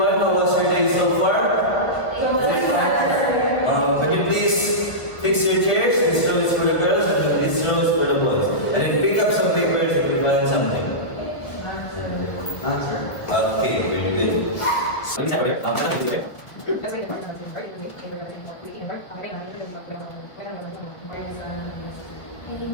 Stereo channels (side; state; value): right; late; 1.7 ms